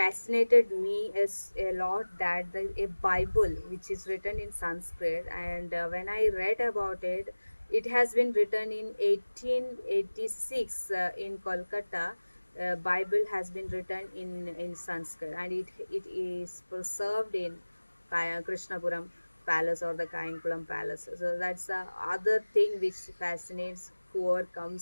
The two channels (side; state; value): both; inverted; correlation -1.00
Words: me is a lot, that a Bible which is written in Sanskrit, and when I read about it, it has been written in 1886 in Kolkata. Bible has been written in Sanskrit, and it is preserved in Krishnapuram Palace or the Kayankulam Palace. So that's the other thing which fascinates whoever